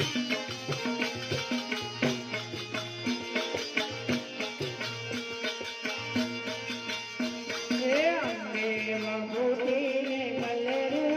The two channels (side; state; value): both; identical; correlation 1.00